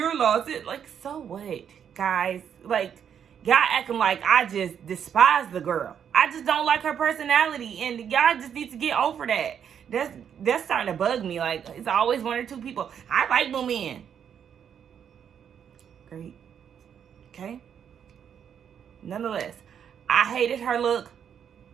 loss. Like, so what, guys? Like, y'all acting like I just despise the girl. I just don't like her personality, and y'all just need to get over that. That's starting to bug me. Like, it's always one or two people. I like Moomin. Great. Okay. Nonetheless, I hated her look.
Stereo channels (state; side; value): quieter; left; 8.3 dB